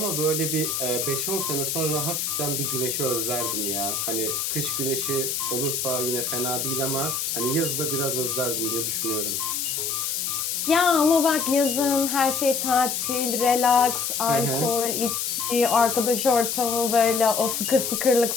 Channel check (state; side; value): noise; left; hiss, 1 dB below the sound